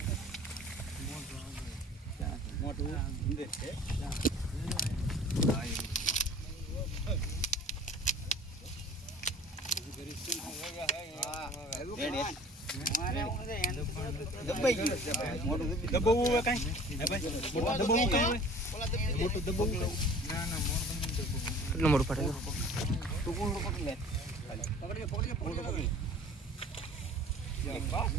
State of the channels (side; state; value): both; normal; correlation 0.46